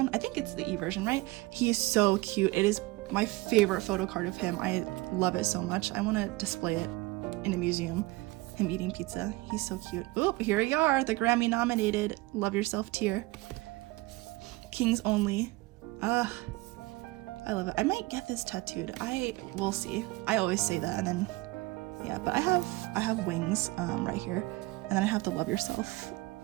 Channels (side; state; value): left; quieter; 21.6 dB